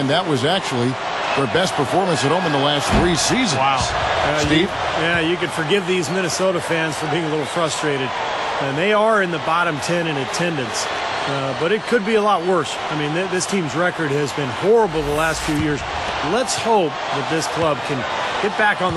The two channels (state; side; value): identical; both; correlation 1.00